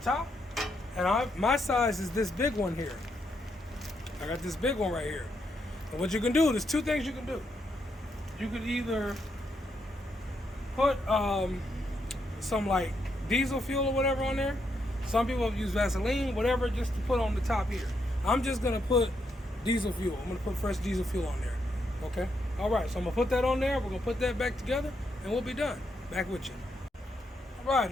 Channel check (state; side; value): normal; both; correlation 0.79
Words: And my size is this big one here. I got this big one right here. And what you can do, there's two things you can do. You could either put some like diesel fuel or whatever on there. Some people use Vaseline, whatever, just to put on the top here. I'm just gonna put diesel fuel. I'm gonna put fresh diesel fuel on there. Okay? All right, so I'm gonna put that on there. We're gonna put that back together and we'll be done. Back with you. All right,